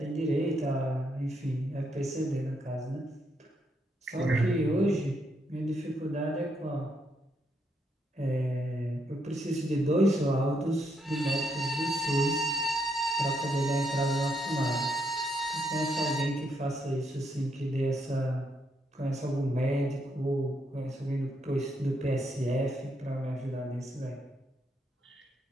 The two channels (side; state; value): both; normal; correlation 0.77